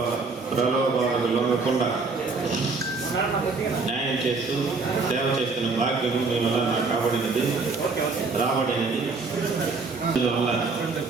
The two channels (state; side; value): quieter; left; 4.2 dB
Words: ప్రలోభాలకు లొంగకుండా న్యాయం చేస్తూ సేవ చేస్తున్న భాగ్యము మీ వల్ల నాకు రాబడినది. అందువల్ల